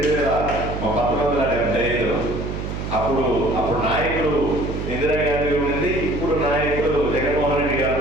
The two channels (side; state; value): right; noise; hum, 5 dB below the sound